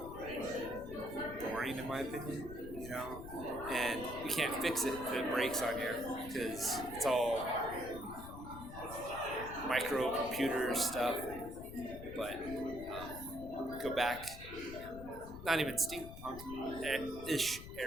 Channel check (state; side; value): noise; left; rumble, 12 dB below the sound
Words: boring, in my opinion, and you can't fix it if it breaks on you because it's all microcomputer stuff. But go back, not even steampunk ish